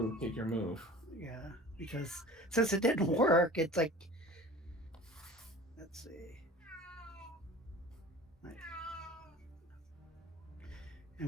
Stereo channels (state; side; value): normal; both; correlation 0.41